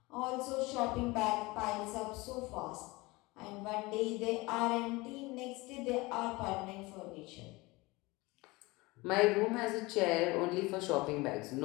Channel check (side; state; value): right; quieter; 22.8 dB